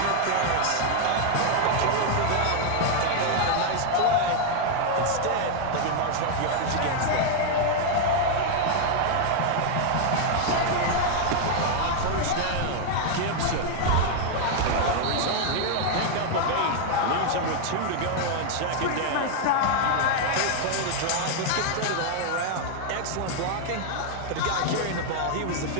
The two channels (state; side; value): different; both; correlation 0.00